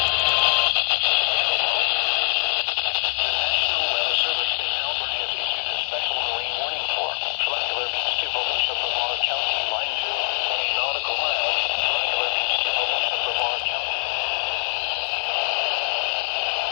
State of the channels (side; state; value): right; silent; digital silence